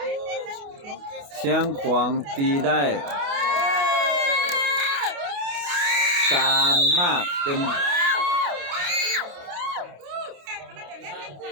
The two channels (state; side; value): late; left; 28 ms